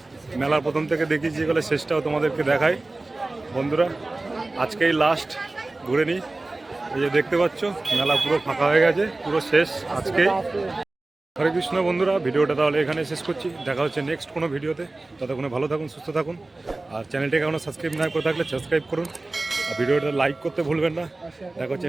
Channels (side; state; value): left; quieter; 3.0 dB